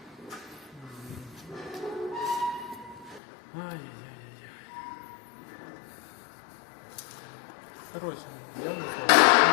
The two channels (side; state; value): right; drops out; at 3.2 s